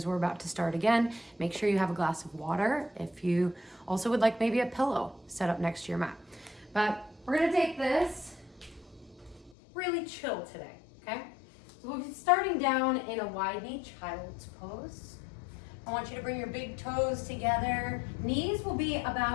we're about to start again. Make sure you have a glass of water. If you also would like maybe a pillow set up next to your mat. But we're gonna take this really chill today, okay? So we'll be starting down in a wide knee child's pose. I want you to bring your big toes together. Knees will be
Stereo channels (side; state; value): right; drops out; at 9.6 s